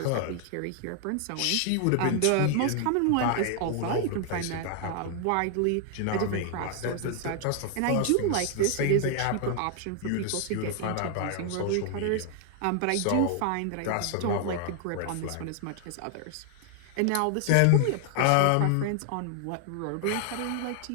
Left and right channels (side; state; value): both; different; correlation 0.00